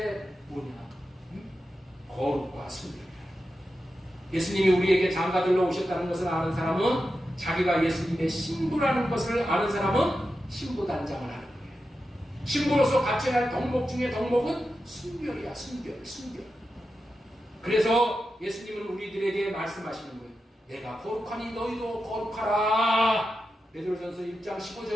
뭐냐? 거룩과 순결. 예수님이 우리에게 장가들러 오셨다는 것을 아는 사람은 자기가 예수님의 신부라는 것을 아는 사람은 신부단장을 하는 거예요. 신부로서 갖춰야 할 덕목 중에 덕목은 순결이야. 순결. 그래서 예수님은 우리들에게 말씀하시는 거예요. 내가 거룩하니 너희도 거룩하라. 베드로전서 1장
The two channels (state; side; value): normal; both; correlation 0.90